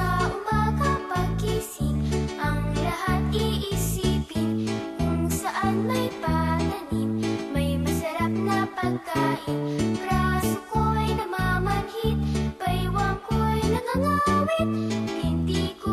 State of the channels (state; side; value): identical; both; correlation 1.00